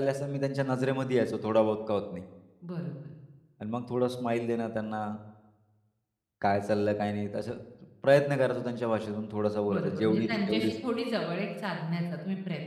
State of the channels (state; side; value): identical; both; correlation 1.00